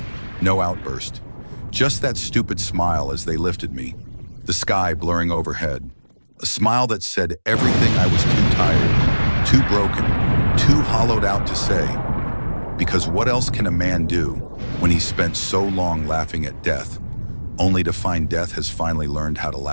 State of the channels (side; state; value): both; inverted; correlation -1.00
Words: no outburst. Just that stupid smile as they lifted me, the sky blurring overhead. A smile that said everything I was too tired, too broken, too hollowed out to say. Because what else can a man do when he's spent so long laughing at death, only to find death has finally learned how to